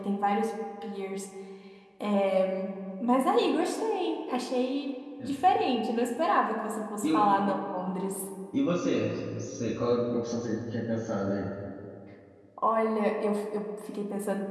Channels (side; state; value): both; identical; correlation 1.00